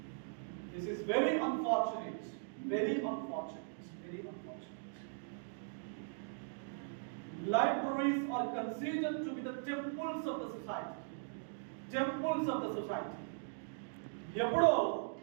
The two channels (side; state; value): left; silent; digital silence